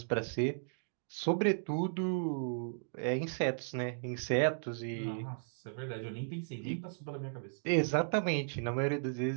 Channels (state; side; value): silent; left; digital silence